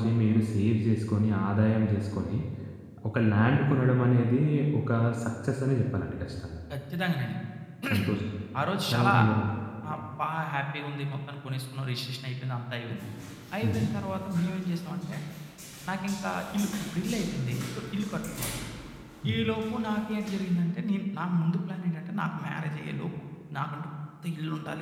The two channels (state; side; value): identical; both; correlation 1.00